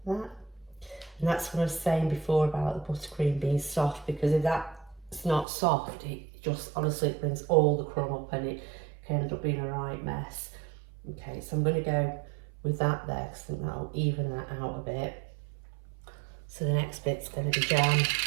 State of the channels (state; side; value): drops out; left; at 5.5 s